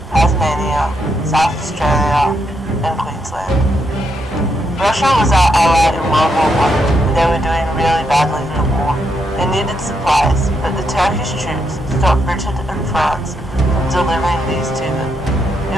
Tasmania, South Australia, and Queensland. Russia was our ally in World War I, and they were doing really badly in the war. They needed supplies, but the Turkish troops stopped Britain and France from delivering these to them. It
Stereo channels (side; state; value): both; normal; correlation 0.79